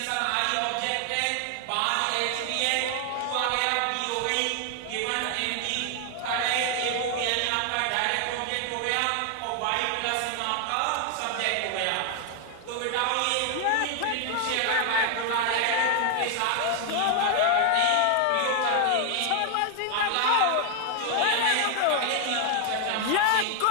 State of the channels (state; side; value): different; both; correlation 0.00